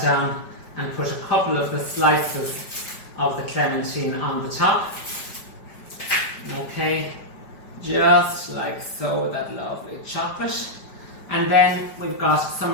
down and put a couple of the slices of the clementine on the top. Okay, just like so, with that lovely chocolate. And then we've got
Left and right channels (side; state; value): right; late; 5.1 ms